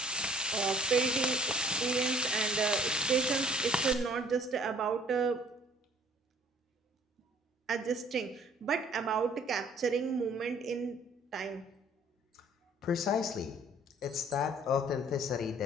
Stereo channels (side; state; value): both; normal; correlation 0.55